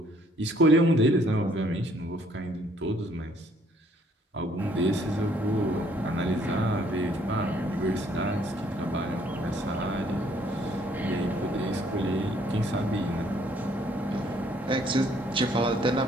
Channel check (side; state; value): both; normal; correlation 0.64